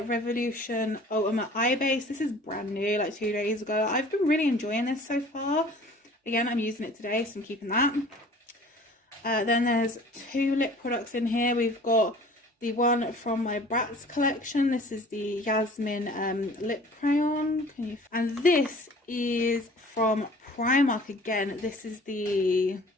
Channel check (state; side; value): normal; both; correlation 0.48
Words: Revolution Ultimate Eye Base. This is brand new, like 2 days ago. I've been really enjoying this so far. Again, I'm using it today, so I'm keeping that. Then there's 2 lip products in here. We've got the one from my Bratz collection. This is the Yasmin Lip Crayon. And this is from Primark again. This is the